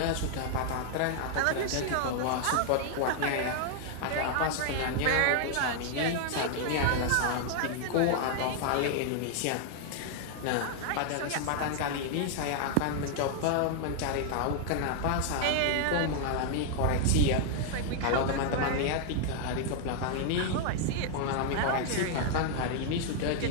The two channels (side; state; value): both; different; correlation 0.00